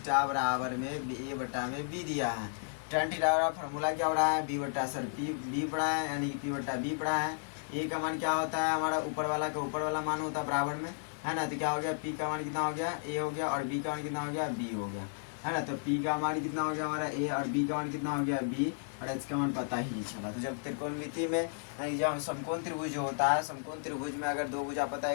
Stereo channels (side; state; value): right; silent; 55 dB below the other